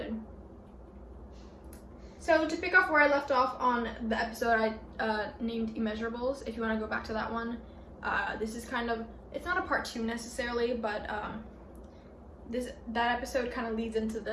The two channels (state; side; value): identical; both; correlation 1.00